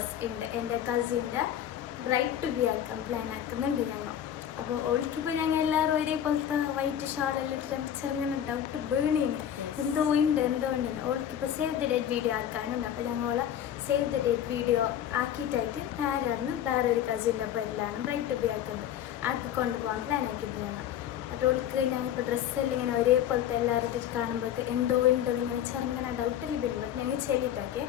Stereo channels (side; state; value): right; quieter; 10.3 dB